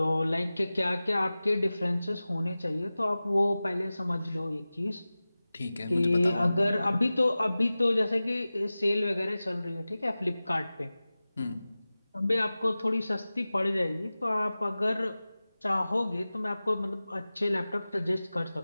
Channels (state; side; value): inverted; both; correlation -0.97